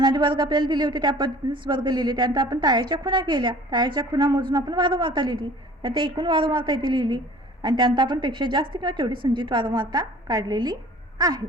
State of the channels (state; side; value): normal; both; correlation 0.48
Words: आधी वर्ग आपल्याला दिले होते त्या पद्धतीनेच वर्ग लिहिले, त्यानंतर आपण टाळ्याच्या खुणा केल्या, टाळ्याच्या खुणा मोजून आपण वारंवारता लिहिली, त्यानंतर एकूण वारंवारता इथे लिहिली आणि त्यानंतर आपण पेक्षा जास्त किंवा तेवढी संचित वारंवारता काढलेली आहे.